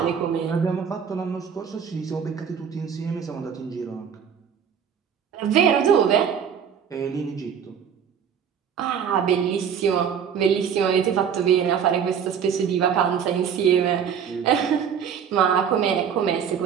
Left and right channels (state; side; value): quieter; left; 7.7 dB